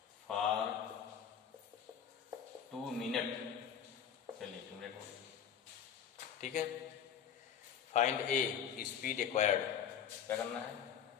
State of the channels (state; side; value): quieter; right; 8.3 dB